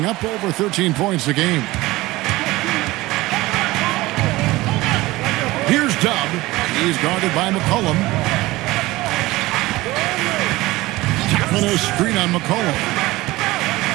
up over 13 points a game. Here's Dub. He's guarded by McCollum. Tapping a screen on McCollum.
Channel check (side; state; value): left; quieter; 19.3 dB